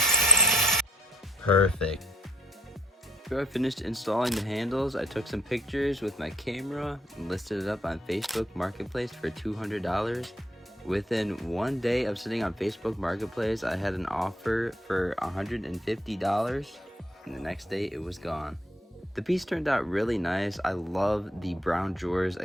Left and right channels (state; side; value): normal; both; correlation 0.65